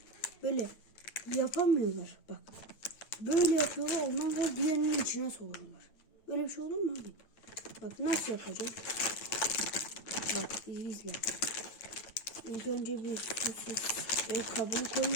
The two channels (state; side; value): late; right; 9.0 ms